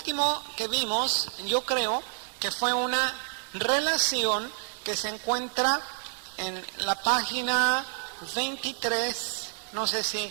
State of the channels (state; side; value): silent; left; digital silence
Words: que vimos, yo creo que fue una relación que se encuentra en la página 23, no sé